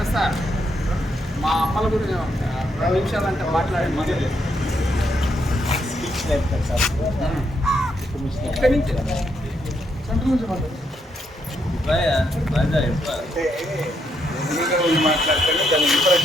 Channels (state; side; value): normal; both; correlation 0.77